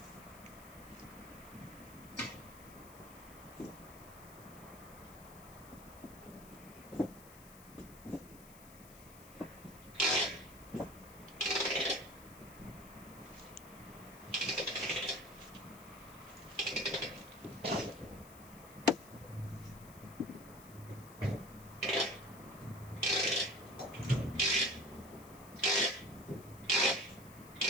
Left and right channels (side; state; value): left; noise; hiss, 19 dB below the sound